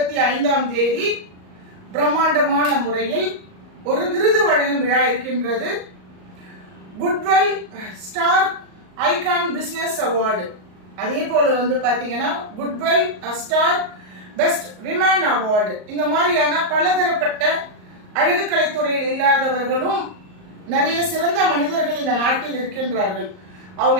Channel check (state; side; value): late; left; 38 ms